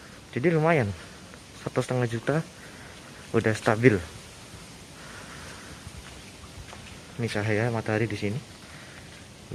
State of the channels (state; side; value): identical; both; correlation 1.00